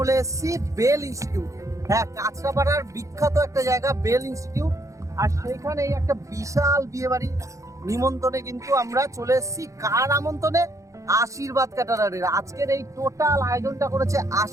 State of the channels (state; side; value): late; left; 0.15 ms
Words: এসেছি বেল ইনস্টিটিউট। হ্যাঁ, কাঁচরাপাড়ার বিখ্যাত একটা জায়গা বেল ইনস্টিটিউট। আর সেইখানে একটা বিশাল বিয়ে বাড়ি নিমন্ত্রণে কিন্তু আমরা চলে এসেছি। কার আমন্ত্রণে? আশীর্বাদ ক্যাটারারের। আজকের এই টোটাল আয়োজনটা করেছে